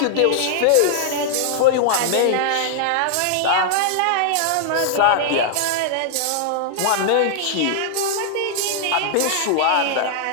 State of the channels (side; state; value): both; different; correlation -0.01